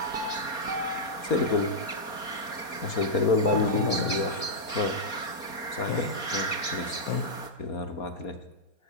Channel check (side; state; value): right; late; 4.3 ms